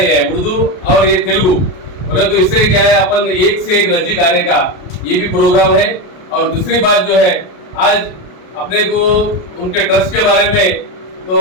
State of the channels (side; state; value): right; late; 33 ms